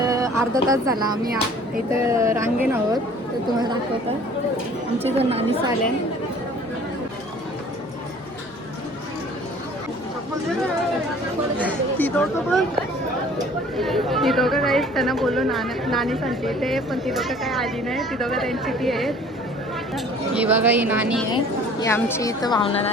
अर्धा तास झाला आम्ही इथं रांगेन आहोत. तर तुम्हाला दाखवतं आमची जो नानी आल्या. ती दोघं काहीच त्यांना बोलू नानी सांगते ते, पण ती दोघं काय आली नाही. ती दोघं त्यांची ती आहेत. ही बघा ही नानी आहे, ही आमची इथं भावना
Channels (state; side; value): normal; both; correlation 0.51